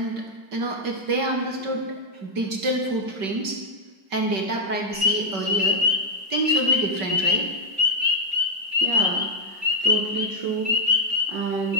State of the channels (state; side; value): late; left; 5.2 ms